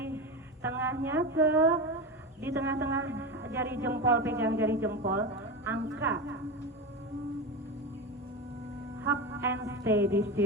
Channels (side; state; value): both; normal; correlation 0.20